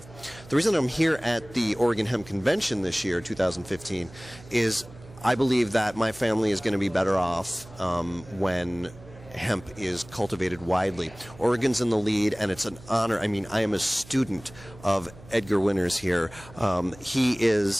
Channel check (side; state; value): right; noise; hum, 20 dB below the sound